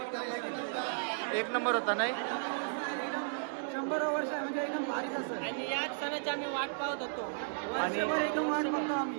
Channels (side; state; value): left; silent; digital silence